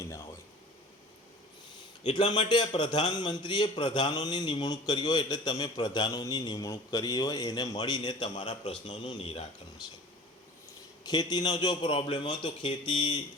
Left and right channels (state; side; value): normal; both; correlation 0.43